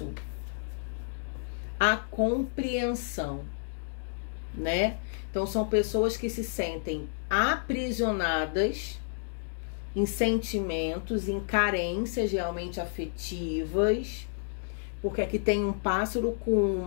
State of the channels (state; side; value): silent; right; digital silence